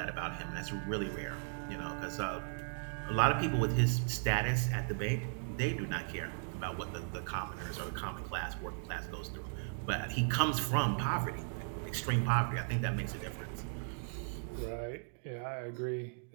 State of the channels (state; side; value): silent; left; digital silence